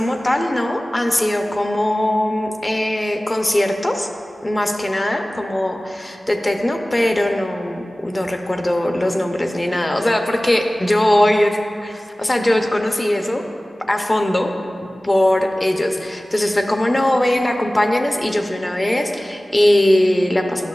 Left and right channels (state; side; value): normal; both; correlation 0.97